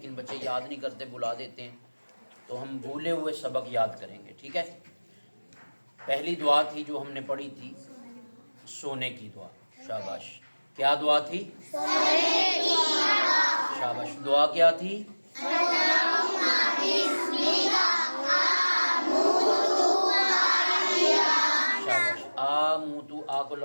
بچے یاد نہیں کرتے، بلا دیتے ہیں، تو ہم بھولے ہوئے سبق یاد کریں گے، ٹھیک ہے؟ پہلی دعا تھی جو ہم نے پڑھی تھی، سونے کی دعا۔ شاباش۔ کیا دعا تھی؟ شاباش۔ دعا کیا تھی؟ شاباش۔ آموتو، آ کو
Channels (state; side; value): inverted; both; correlation -1.00